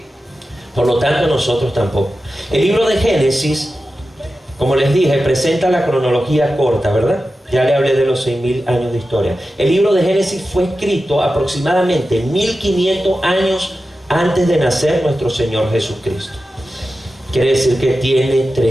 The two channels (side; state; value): both; normal; correlation 0.93